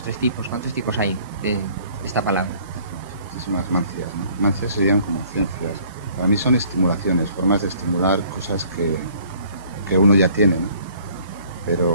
3 tipos, ¿cuántos tipos hay de esta palabra? Muchísimas mancias, ¿no? Mancias serían como ciencias. Para mí son estimulaciones, formas de estimular cosas que uno ya tiene, ¿no?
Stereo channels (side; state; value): both; inverted; correlation -0.57